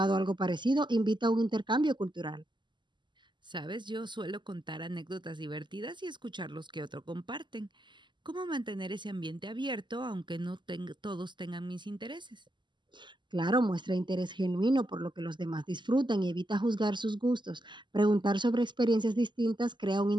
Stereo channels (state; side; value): late; left; 0.22 ms